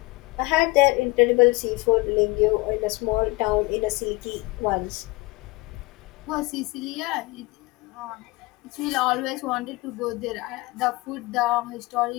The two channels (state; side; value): quieter; right; 23.1 dB